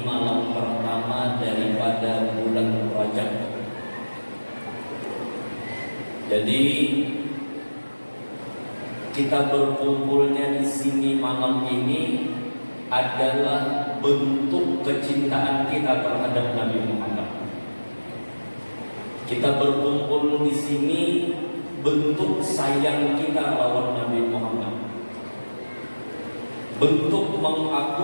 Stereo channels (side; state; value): both; inverted; correlation -1.00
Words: malam pertama daripada bulan Rajab. Jadi kita berkumpulnya di sini malam ini adalah bentuk kecintaan kita terhadap Nabi Muhammad. Kita berkumpul di sini bentuk sayang kita lawan Nabi Muhammad. Bentuk